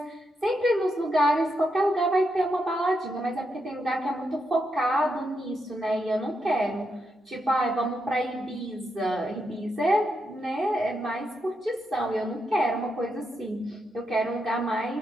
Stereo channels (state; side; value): normal; both; correlation 0.82